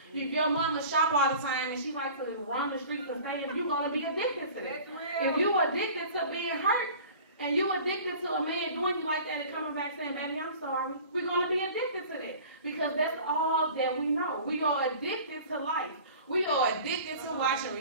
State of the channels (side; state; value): both; inverted; correlation -0.43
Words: If your mama shop all the time and she likes to run the streets and stay, you're going to be addicted to that. If you're addicted to being hurt, and you addicted to a man doing you like that and coming back saying, baby, I'm sorry, we're going to be addicted to that because that's all that we know. We are addicted to life. We are addicted to watching